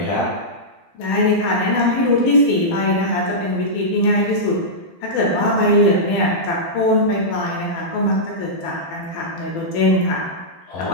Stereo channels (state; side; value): late; right; 12 ms